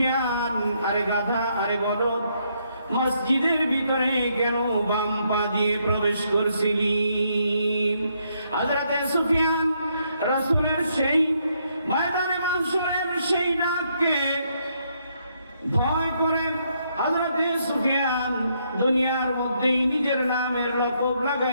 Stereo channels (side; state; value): both; inverted; correlation -0.74